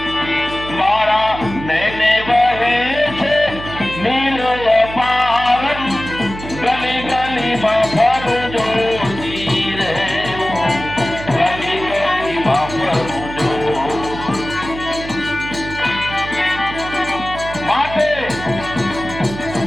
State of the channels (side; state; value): right; noise; hum, 11 dB below the sound